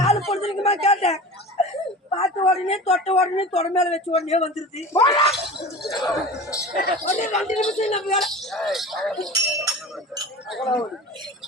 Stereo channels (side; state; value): both; normal; correlation 0.35